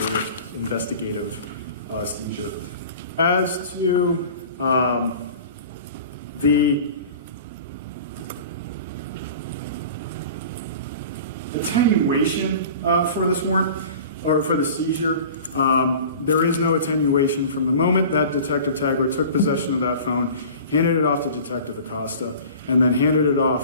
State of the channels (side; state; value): both; inverted; correlation -0.41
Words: seizure. As to the attenuation for this warrant, or for the seizure, there is no attenuation from the moment that Detective Tagler took possession of that phone, handed it off to Detective Acosta, and then handed it